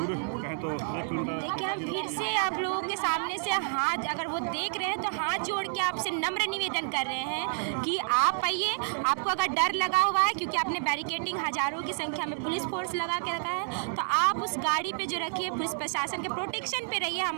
कहें तो 1 किलोमीटर। देखिए, हम फिर से आप लोगों के सामने से हाथ अगर वो देख रहे हैं तो हाथ जोड़ के आपसे नम्र निवेदन कर रहे हैं कि आप आइए। आपको अगर डर लगा हुआ है क्योंकि आपने बैरिकेडिंग हजारों की संख्या में पुलिस फोर्स लगा के रखा है, तो आप उस गाड़ी पे जो रखिए, पुलिस प्रशासन के प्रोटेक्शन पे रहिए।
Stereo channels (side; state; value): left; silent; digital silence